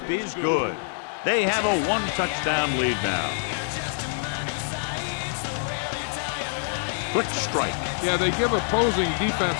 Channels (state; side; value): silent; right; 56 dB below the other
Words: is good. They have a 1-touchdown lead now. Quick strike. Yeah, they give opposing